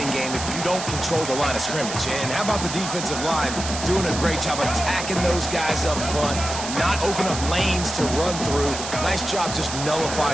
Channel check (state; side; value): noise; right; hiss, 6 dB below the sound